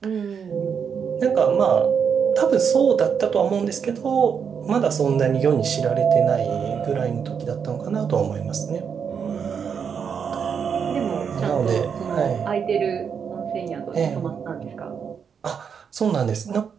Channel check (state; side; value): quieter; left; 6.9 dB